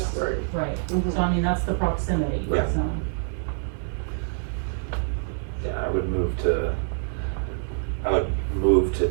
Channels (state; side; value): silent; left; digital silence